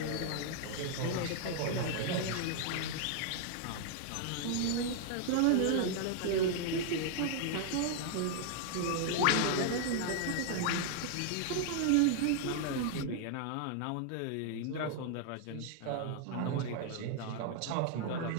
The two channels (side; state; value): both; different; correlation 0.00